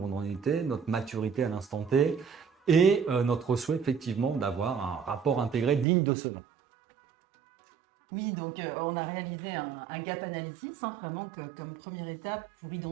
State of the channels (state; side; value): drops out; left; at 5.9 s